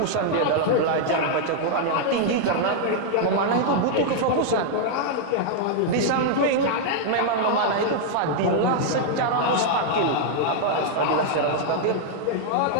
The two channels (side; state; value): both; different; correlation -0.01